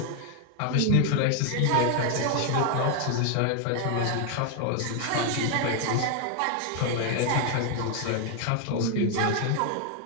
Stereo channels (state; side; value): different; both; correlation 0.00